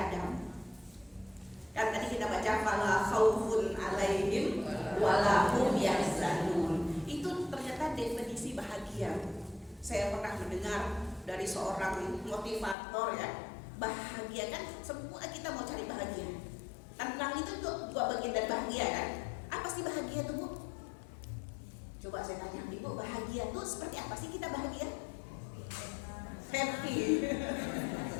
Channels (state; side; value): drops out; right; at 12.8 s